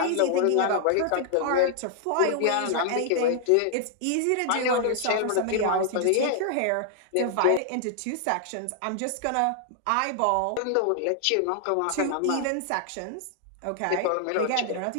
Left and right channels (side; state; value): both; different; correlation 0.00